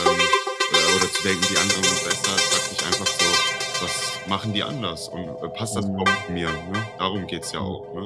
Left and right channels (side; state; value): both; identical; correlation 1.00